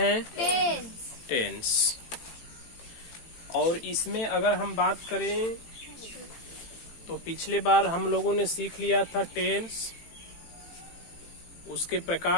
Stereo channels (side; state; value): right; late; 18 ms